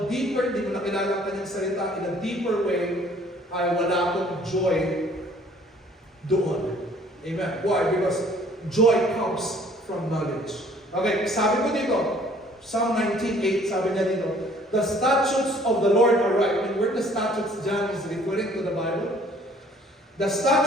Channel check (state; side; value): normal; both; correlation 0.57